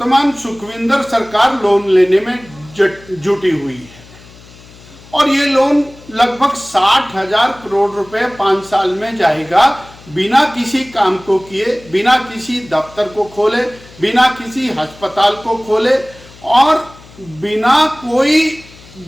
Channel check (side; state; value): left; noise; hum, 22 dB below the sound